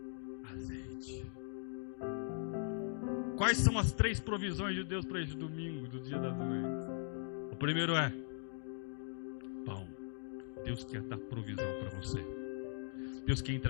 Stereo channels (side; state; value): right; silent; digital silence